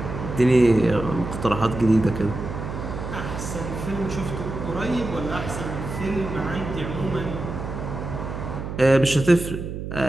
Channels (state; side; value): noise; right; hum, 6 dB below the sound